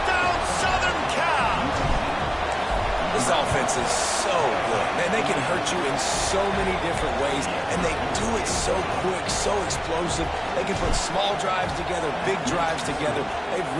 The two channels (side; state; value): both; identical; correlation 1.00